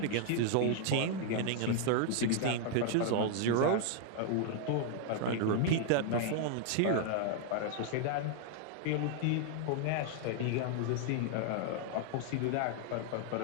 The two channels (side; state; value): both; different; correlation 0.00